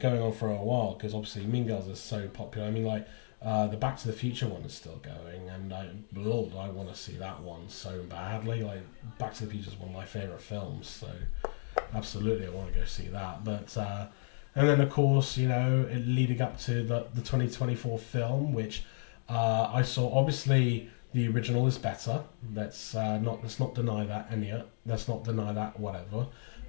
on for a while because obviously Mean Girls is so popular. I mean, like the Back to the Future one is still going, and I want to see that one so badly. Like, Back to the Future is one of my favorite films, so absolutely I want to go see that. But and then of course, you know, leading up to the 2024 film, which I saw. Obviously, the original is better. Let's not deny that, Enya. Let's not deny that, whatever.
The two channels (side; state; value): right; silent; digital silence